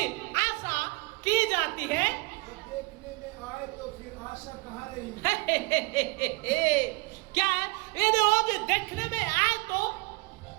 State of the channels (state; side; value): quieter; left; 26.2 dB